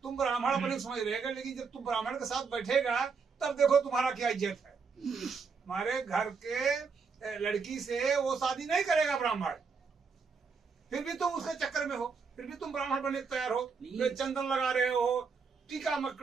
ब्राह्मण अपने को समझ रहेगा, लेकिन जब तुम ब्राह्मण के साथ बैठेगा तब देखो तुम्हारा क्या इज्जत है। हमारे घर के लड़की से वो शादी नहीं करेगा ब्राह्मण, फिर भी तुम उसके चक्कर में हो, फिर भी तुम ब्राह्मण बनने तैयार हो, चंदन लगा रहे हो, टीका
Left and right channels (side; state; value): left; quieter; 5.3 dB